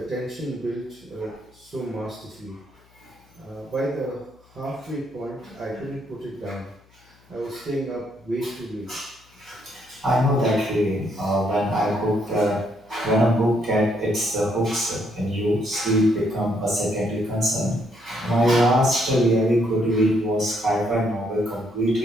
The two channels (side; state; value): left; noise; hum, 30 dB below the sound